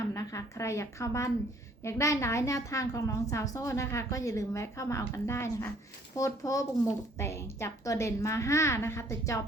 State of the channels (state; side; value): normal; both; correlation 0.59